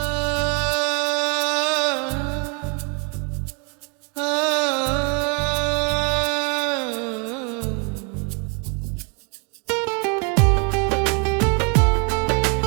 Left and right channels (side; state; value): left; quieter; 35.3 dB